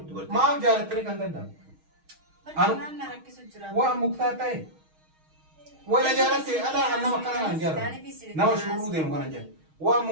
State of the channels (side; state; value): left; late; 6.4 ms